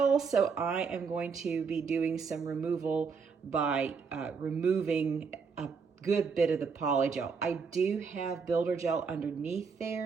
so I am going to be doing some removal by removing a good bit of the polygel. I do have builder gel underneath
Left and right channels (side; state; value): left; quieter; 5.4 dB